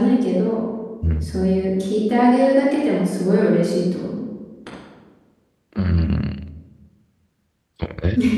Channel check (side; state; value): both; identical; correlation 1.00